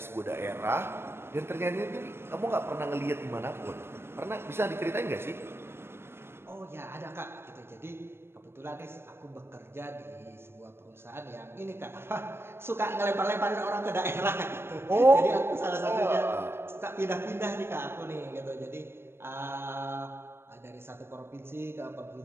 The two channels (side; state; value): left; late; 0.12 ms